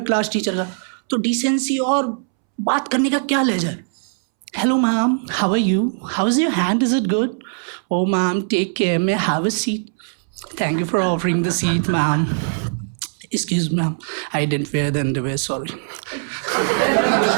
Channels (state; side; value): silent; left; 65 dB below the other